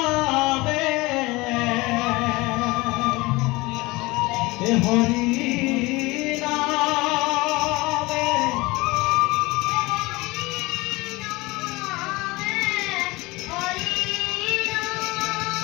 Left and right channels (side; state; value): right; quieter; 22.3 dB